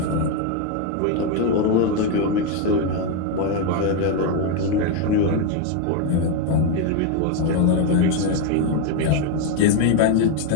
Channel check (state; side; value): different; both; correlation 0.01